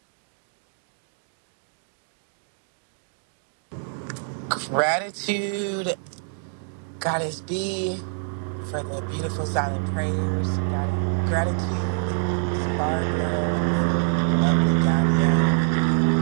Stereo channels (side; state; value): left; silent; 61 dB below the other